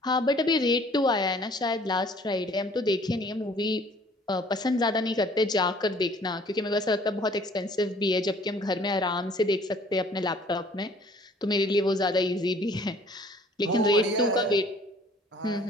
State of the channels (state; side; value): normal; both; correlation 0.55